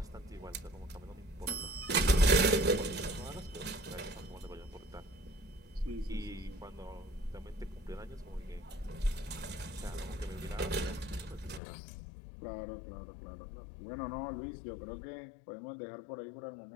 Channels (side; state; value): right; drops out; at 11.6 s